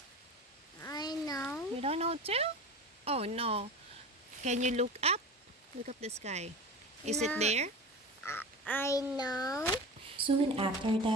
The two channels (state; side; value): normal; both; correlation 0.31